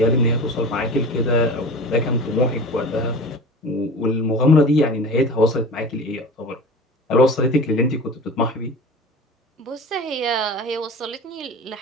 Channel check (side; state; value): both; normal; correlation 0.36